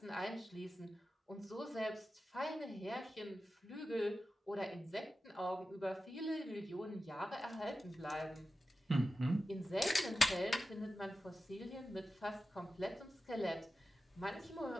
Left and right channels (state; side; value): normal; both; correlation 0.93